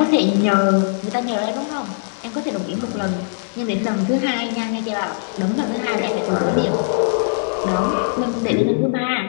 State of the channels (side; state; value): right; silent; 63 dB below the other